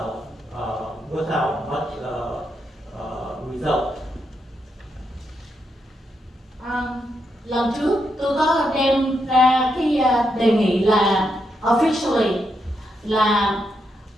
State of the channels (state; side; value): normal; both; correlation 0.82